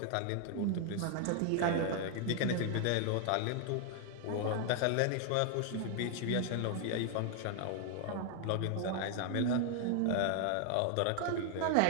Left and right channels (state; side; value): different; both; correlation 0.00